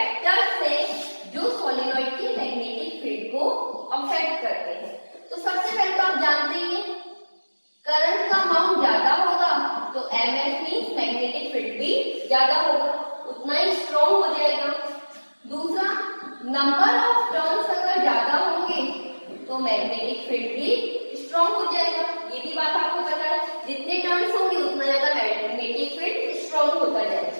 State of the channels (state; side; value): inverted; both; correlation -1.00